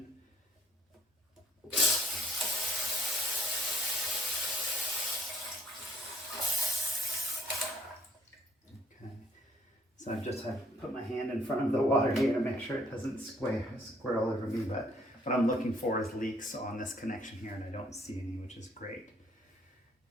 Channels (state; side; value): normal; both; correlation 0.64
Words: Okay, so I just have to put my hand in front of the water here to make sure it doesn't square all over me, but what I'm looking for is leaks on this connection here, and I don't see any, which is great.